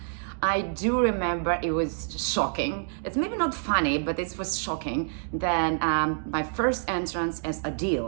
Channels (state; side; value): silent; left; digital silence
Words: I do remember it was shocking. It's maybe not funny, but it was shocking. Then my first entrance as